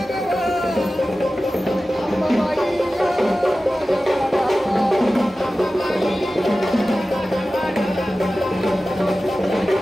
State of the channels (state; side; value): normal; both; correlation 0.95